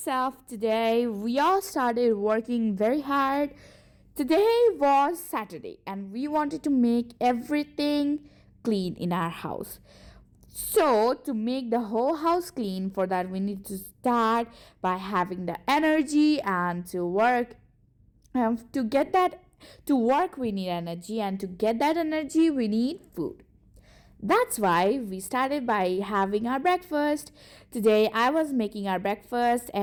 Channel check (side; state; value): both; identical; correlation 1.00